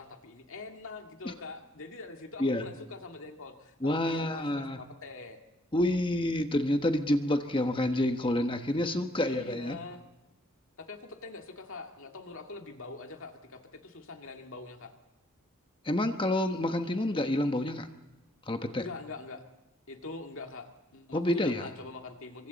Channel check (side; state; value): both; normal; correlation 0.68